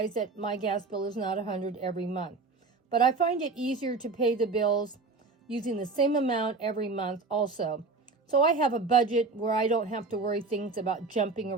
that my gas bill is not 100 every month. But I find it easier to pay the bills using the same amount every month also. So I have a budget where I don't have to worry things about jumping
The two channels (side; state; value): left; quieter; 4.0 dB